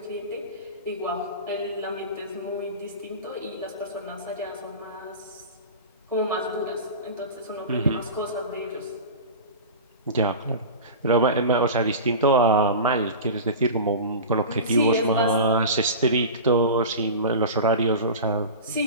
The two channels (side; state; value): both; inverted; correlation -0.31